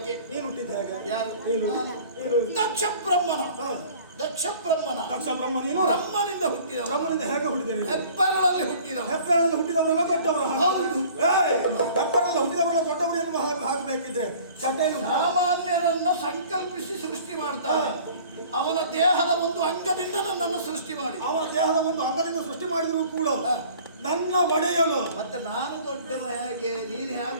ನೀನು ಹುಟ್ಟಿದ್ದೆ ಹೇಗೆ? ಯಾರು? ನೀನು ದಕ್ಷ ಬ್ರಹ್ಮನ. ಹಾ. ದಕ್ಷ ಬ್ರಹ್ಮನ. ದಕ್ಷ ಬ್ರಹ್ಮ ನೀನು ಬ್ರಹ್ಮನಿಂದ ಹುಟ್ಟಿದವ. ಬ್ರಹ್ಮನಿಂದ ಹೇಗೆ ಹುಟ್ಟಿದೆ ನೀನು? ಹೆಬ್ಬೆರಳಲ್ಲಿ ಹುಟ್ಟಿದವ. ಹೆಬ್ಬೆರಳಲ್ಲಿ ಹುಟ್ಟಿದವರೆಲ್ಲ ದೊಡ್ಡವರು. ಹೌದು. ಹೆಬ್ಬೆರಳಲ್ಲಿ ಹುಟ್ಟಿದವರೆಲ್ಲ ದೊಡ್ಡವರು ಎನ್ನುವ ಹಾಕಬೇಕಿದ್ರೆ ಚಟೆಯಲ್ಲಿ ಸಾಮಾನ್ಯರನ್ನ ಸಂಕಲ್ಪಿಸಿ ಸೃಷ್ಟಿ ಮಾಡ್ತಾನೆ. ಅವನ ದೇಹದ ಒಂದು ಅಂಗದಿಂದ ನನ್ನನ್ನು ಸೃಷ್ಟಿ ಮಾಡಿ, ಅವನ ದೇಹದ ಒಂದು ಅಂಗದಿಂದ ಸೃಷ್ಟಿ ಮಾಡಿದ್ರು ಕೂಡ ನನ್ನ ಒಡೆಯಲು ಮತ್ತೆ ನಾನು ದೊಡ್ಡವ ಹೇಗೆ, ನೀನು ಹೇಗೆ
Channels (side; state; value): both; inverted; correlation -0.49